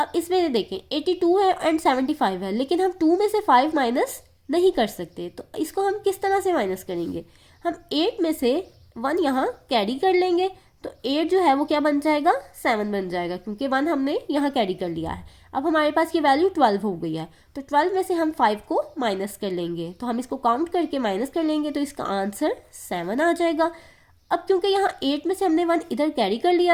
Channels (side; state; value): both; identical; correlation 1.00